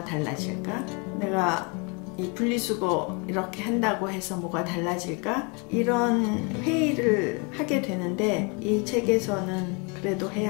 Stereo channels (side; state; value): right; quieter; 32.8 dB